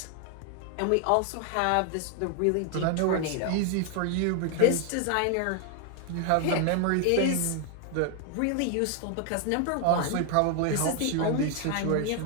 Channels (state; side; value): different; both; correlation 0.00